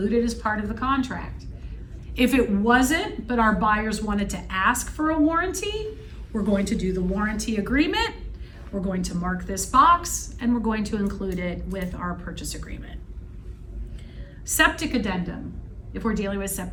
it as part of the contract. If it wasn't, but our buyers wanted to ask for a warranty, we're going to do the warranty agreement. We're going to mark this box and we're going to include it with our purchase agreement. Septic addendum. If we're dealing with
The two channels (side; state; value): both; identical; correlation 1.00